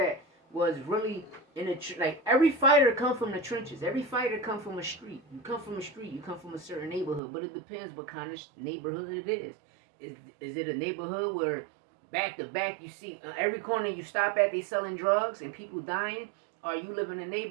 was really in the like every fighter come from the trenches. Every fighter come from a street. You come from a street. You come from a certain neighborhood. But it depends what kind of neighborhood it is. Is it a neighborhood where back to back you see every corner you stop at they selling drugs and people dying? Or you live in a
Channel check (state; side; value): drops out; left; at 7.2 s